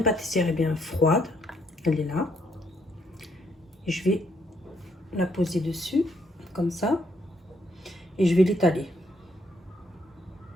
pâtissière est bien froide. Elle est là. Et je vais la poser dessus, comme ça. Et je vais l'étaler.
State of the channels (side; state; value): both; normal; correlation 0.72